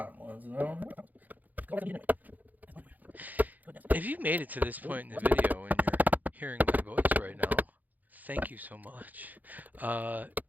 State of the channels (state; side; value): late; left; 0.082 ms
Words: ones and I don't know. If you made it to this point in the video and you're hearing my voice right now, thank you so much.